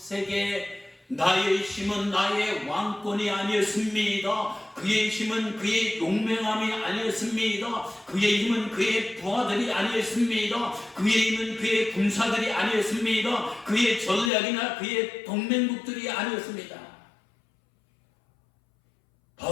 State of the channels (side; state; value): right; drops out; at 14.3 s